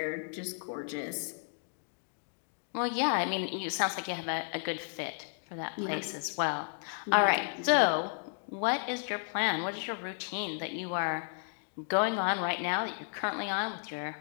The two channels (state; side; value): silent; right; digital silence